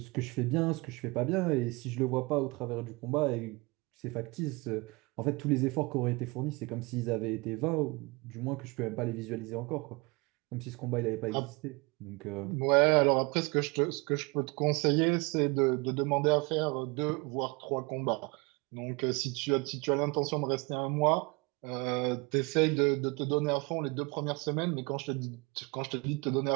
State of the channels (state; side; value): quieter; left; 26.5 dB